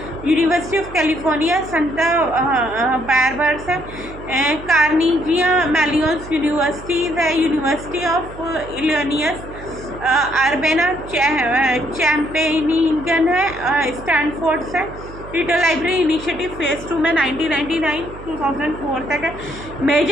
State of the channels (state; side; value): noise; right; hum, 15 dB below the sound